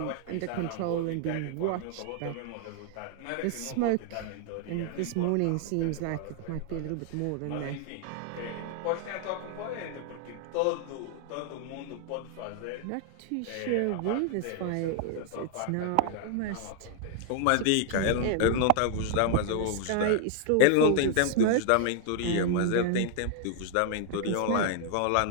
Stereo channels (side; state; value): both; different; correlation 0.00